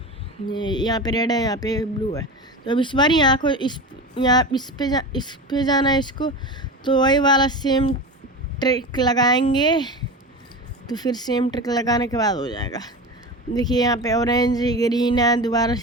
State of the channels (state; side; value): normal; both; correlation 0.27